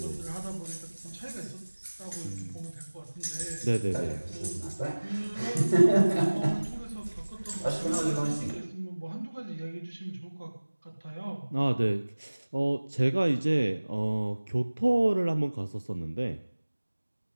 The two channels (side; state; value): both; inverted; correlation -1.00